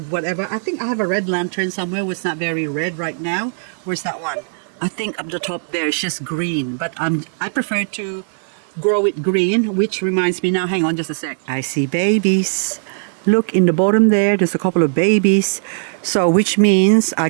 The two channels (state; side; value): silent; left; digital silence